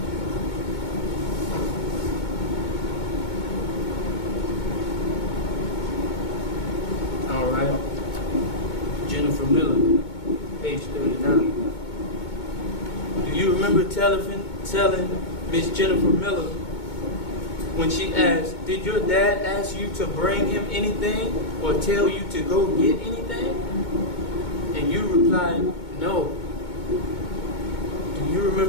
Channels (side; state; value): right; late; 2.2 ms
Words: All right. Jennifer Miller, page 39. Do you remember telling Miss Jennifer Miller when she asked, did your dad ask you to bring him anything or tell you to go get anything? And you replied, no. Do you